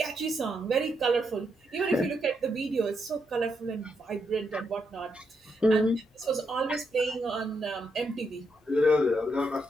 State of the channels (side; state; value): both; normal; correlation 0.80